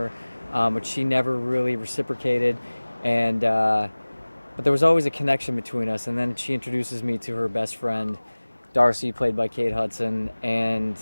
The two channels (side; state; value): both; inverted; correlation -1.00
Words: but she never really reciprocated, and but there was always a connection between us. And then she introduces me to her best friend, Darcy, played by Kate Hudson, and